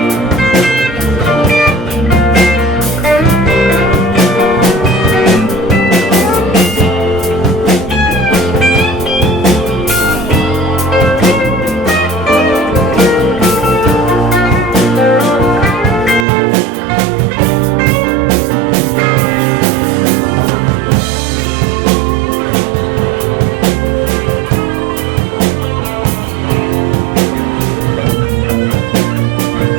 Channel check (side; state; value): left; drops out; at 16.2 s